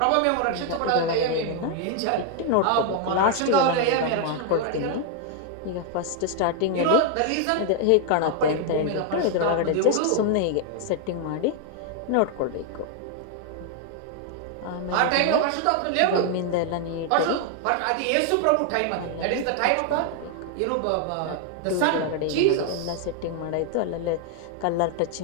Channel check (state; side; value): different; both; correlation 0.00